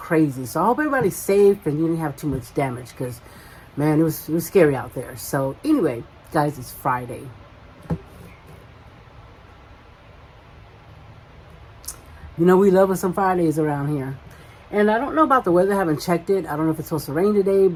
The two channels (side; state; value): both; identical; correlation 1.00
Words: So I hope everybody's safe and you didn't have too much damage because, man, it was scary out there. So anyway, guys, it's Friday. You know, we love us some Fridays around here. And I don't know about the weather. I haven't checked it. I don't know if it's supposed to rain today,